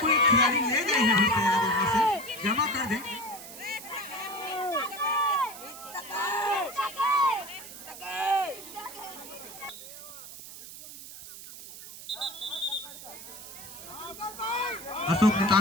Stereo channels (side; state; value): right; noise; hiss, 14 dB below the sound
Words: खिलाड़ी ले गए हैं से जमा कर दें। अशोक